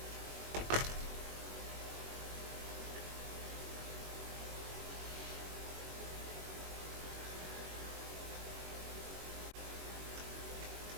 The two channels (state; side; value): late; left; 21 ms